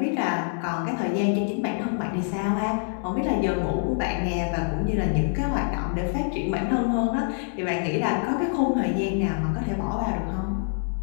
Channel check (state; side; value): silent; right; 61 dB below the other